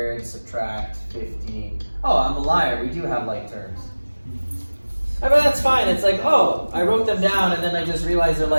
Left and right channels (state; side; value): inverted; both; correlation -1.00